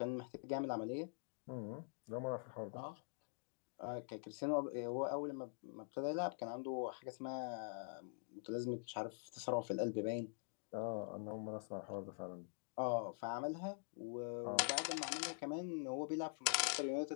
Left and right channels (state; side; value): silent; right; digital silence